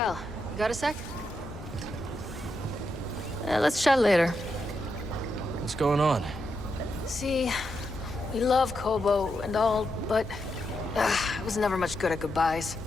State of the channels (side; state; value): both; normal; correlation 0.84